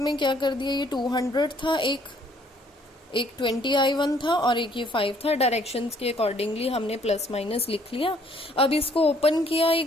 क्या कर दिया, ये 200 था, एक 20 I1 था और एक ये 5 था। डायरेक्शंस के अकॉर्डिंगली हमने प्लस माइनस लिख लिया। अब इसको ओपन किया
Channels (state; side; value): normal; both; correlation 0.63